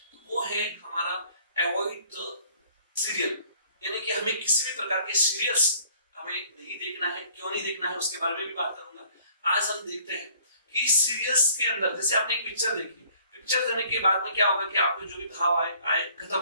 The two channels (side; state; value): both; inverted; correlation -0.57